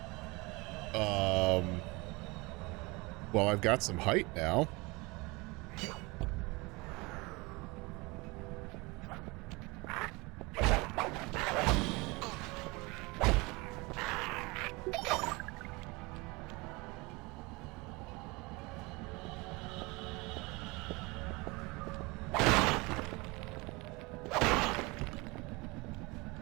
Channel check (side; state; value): left; quieter; 25.0 dB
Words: Well, I've got some height now.